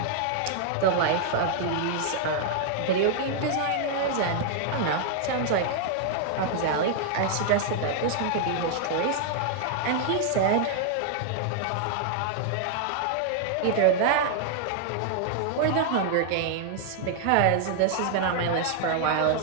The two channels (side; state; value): both; different; correlation 0.00